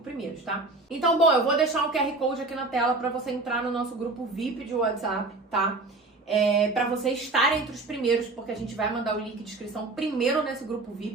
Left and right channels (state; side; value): quieter; left; 3.2 dB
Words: primeiros, tá? Então, bom, eu vou deixar um QR Code aqui na tela para você entrar no nosso grupo VIP de WhatsApp, tá? Para você estar entre os primeiros, porque a gente vai mandar o link de inscrição primeiro nesse grupo